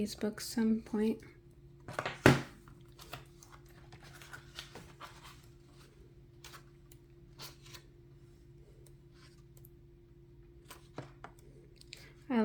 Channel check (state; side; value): identical; both; correlation 1.00